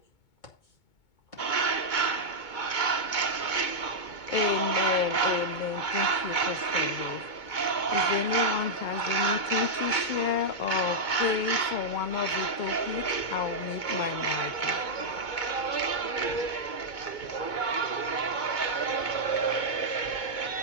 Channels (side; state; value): right; late; 2.2 ms